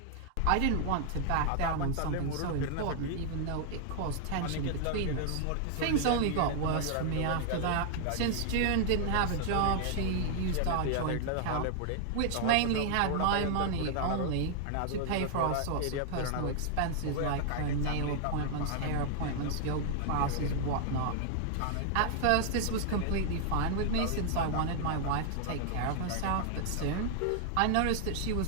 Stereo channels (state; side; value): different; both; correlation 0.00